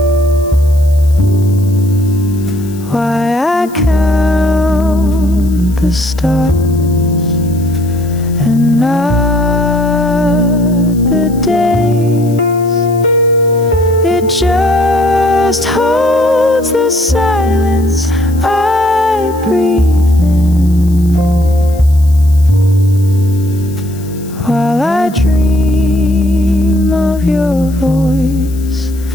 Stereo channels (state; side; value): noise; left; hiss, 22 dB below the sound